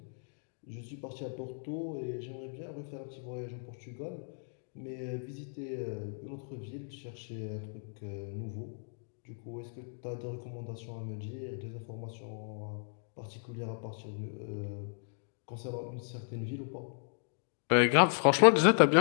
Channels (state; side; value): silent; right; digital silence